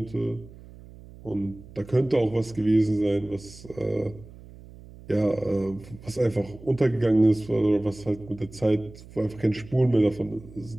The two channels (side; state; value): right; noise; hum, 19 dB below the sound